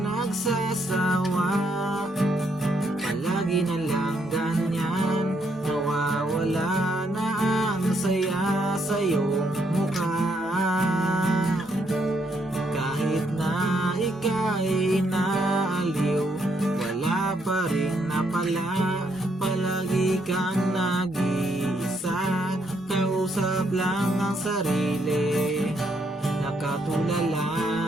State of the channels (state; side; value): normal; both; correlation 0.74